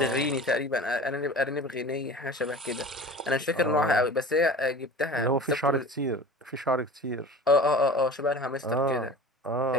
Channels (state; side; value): normal; both; correlation 0.38